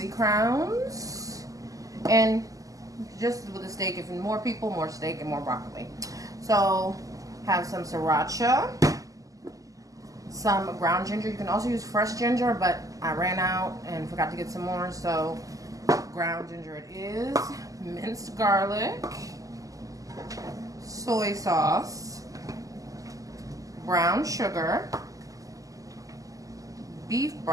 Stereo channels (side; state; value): left; late; 0.17 ms